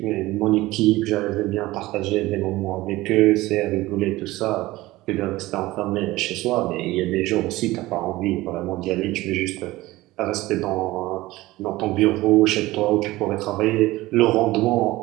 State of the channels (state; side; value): quieter; left; 18.4 dB